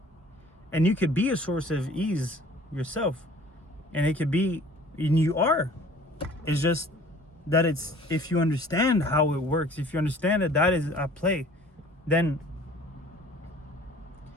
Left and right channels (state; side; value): normal; both; correlation 0.50